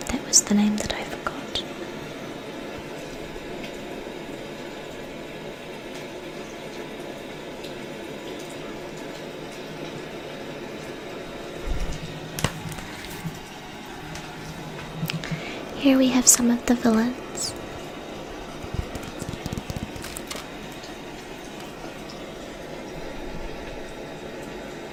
That was the name that I forgot. Here we have some of the villains.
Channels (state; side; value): identical; both; correlation 1.00